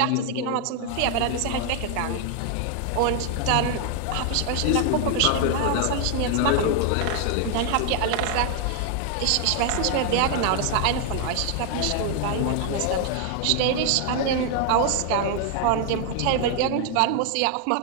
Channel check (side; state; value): both; different; correlation 0.00